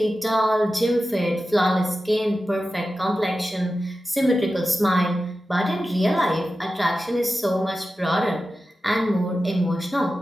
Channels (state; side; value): normal; both; correlation 0.93